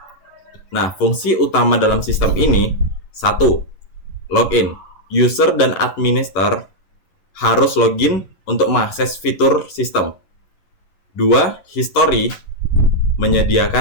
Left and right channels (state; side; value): late; right; 11 ms